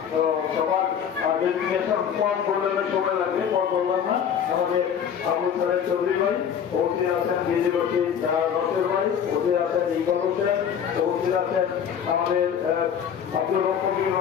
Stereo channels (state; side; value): quieter; right; 8.1 dB